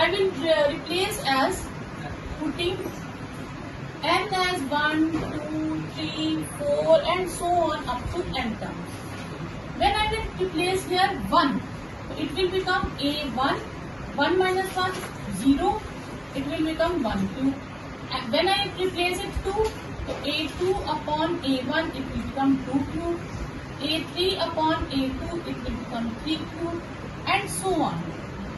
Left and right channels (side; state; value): both; identical; correlation 1.00